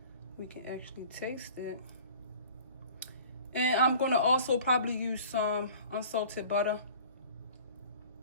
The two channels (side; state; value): both; inverted; correlation -0.46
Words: we can actually taste it. And I'm gonna also probably use some unsalted butter